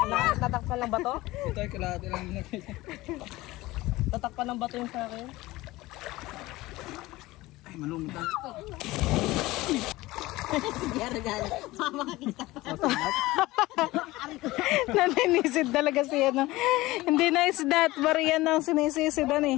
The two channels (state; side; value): quieter; right; 19.0 dB